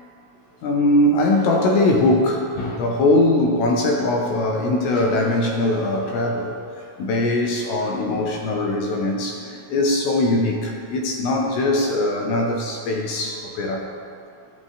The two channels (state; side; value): late; right; 16 ms